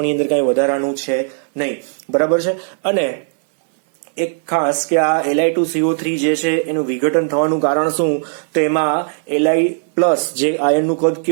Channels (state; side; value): silent; left; 68 dB below the other